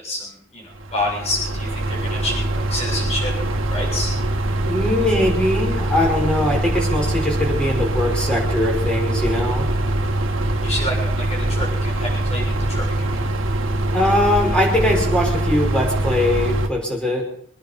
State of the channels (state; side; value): normal; both; correlation 0.67